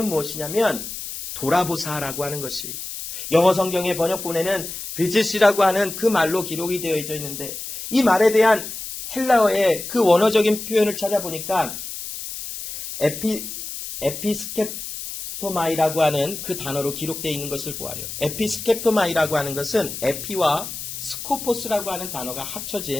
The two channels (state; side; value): noise; left; hiss, 8 dB below the sound